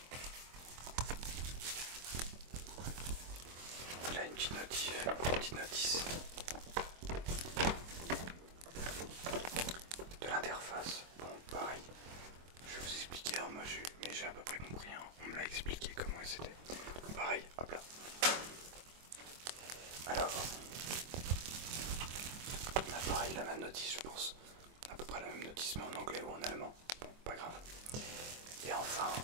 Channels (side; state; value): left; late; 24 ms